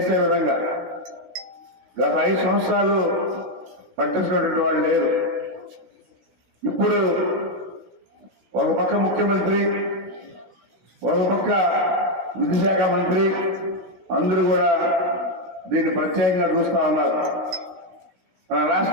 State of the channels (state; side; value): late; left; 16 ms